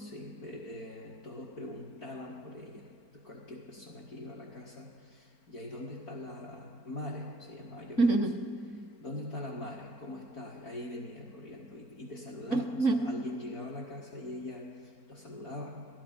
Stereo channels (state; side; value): late; right; 4.4 ms